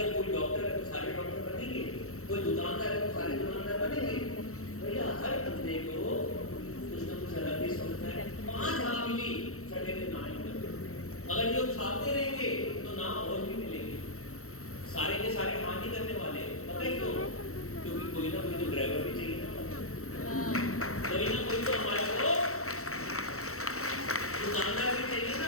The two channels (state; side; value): late; right; 0.64 ms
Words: कोई डॉक्टर है तो सारे डॉक्टर बनेंगे। कोई दुकानदार है तो सारे दुकानदार बनेंगे। भैया हर बंदे को कुछ ना कुछ अलग ही सोचना है। 5 हाँ मिली, छठे दिन ना मिले। अगर ये उछालते रहेंगे तो ना और भी मिलेंगे। सारे के सारे हाँ नहीं करने वाले, पता है क्यों? क्योंकि कोई ना कोई तो ड्राइवर भी चाहिए ना, कोई ना कोई तो हमारे को दुकानदार भी चाहिए